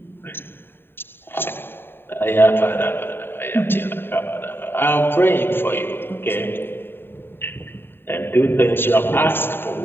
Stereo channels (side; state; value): right; late; 0.11 ms